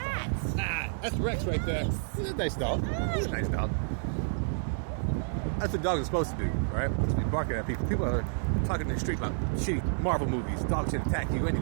That's Rex right there. He's a nice dog. He's a nice dog. That's what dogs are supposed to do, right? Just be barking at people. People are talking in the street about shitty Marvel movies. Dogs should attack you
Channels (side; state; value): left; silent; digital silence